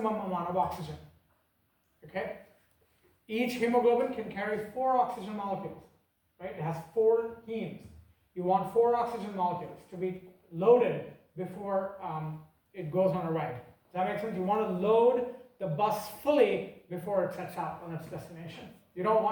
amount of oxygen. Okay? Each hemoglobin can carry 4 oxygen molecules, right? It has 4 hemes. You want 4 oxygen molecules to be loaded before it goes on a ride. Does that make sense? You want to load the bus fully before it sets out on its destination. You don't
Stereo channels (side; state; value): both; identical; correlation 1.00